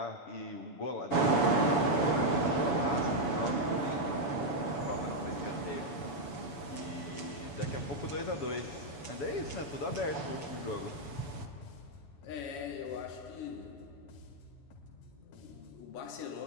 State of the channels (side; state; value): right; late; 7.1 ms